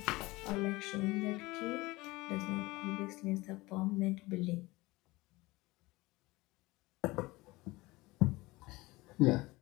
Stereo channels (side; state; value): right; quieter; 21.2 dB